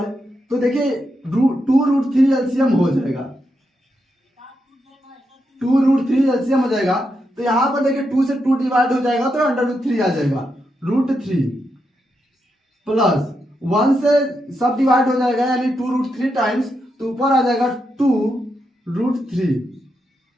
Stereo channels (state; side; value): normal; both; correlation 0.84